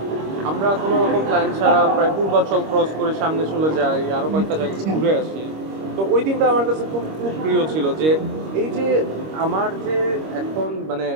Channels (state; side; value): late; left; 26 ms